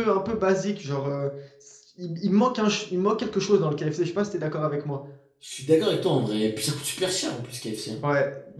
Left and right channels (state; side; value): identical; both; correlation 1.00